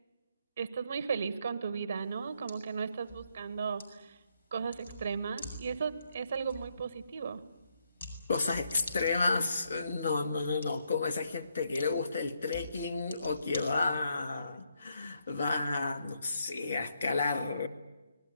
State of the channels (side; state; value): both; inverted; correlation -0.76